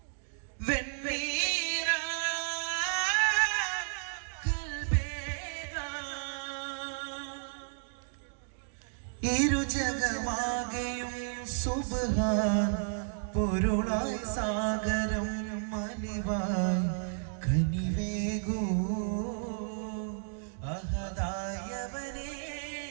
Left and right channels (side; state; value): left; silent; digital silence